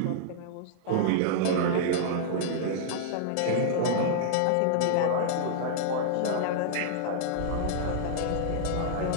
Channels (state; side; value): different; both; correlation -0.01